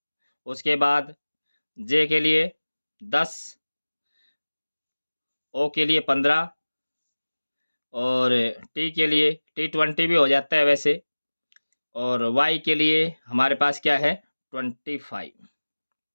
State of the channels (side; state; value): both; inverted; correlation -1.00